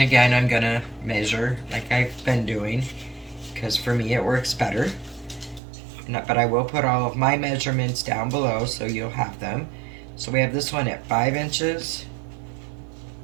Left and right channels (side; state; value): left; drops out; at 5.6 s